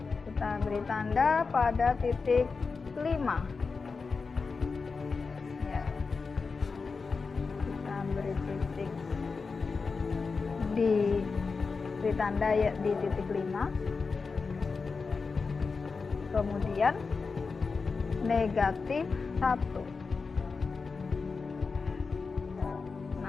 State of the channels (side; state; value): right; quieter; 4.6 dB